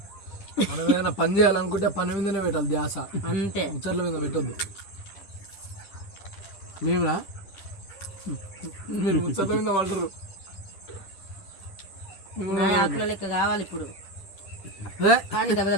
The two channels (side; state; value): right; late; 10 ms